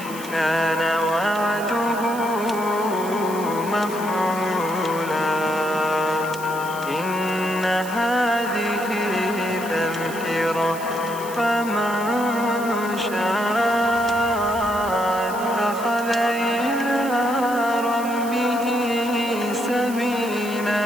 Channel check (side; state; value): right; noise; hiss, 14 dB below the sound